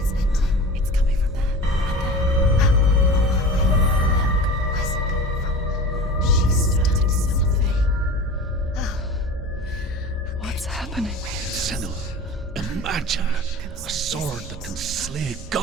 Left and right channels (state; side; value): normal; both; correlation 0.35